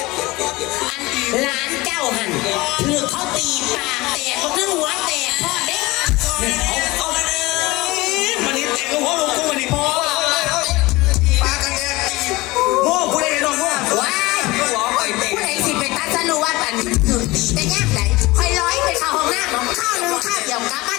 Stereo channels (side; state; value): right; quieter; 21.1 dB